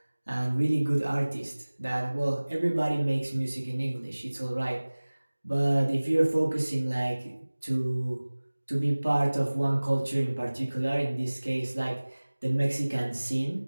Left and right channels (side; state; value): both; inverted; correlation -1.00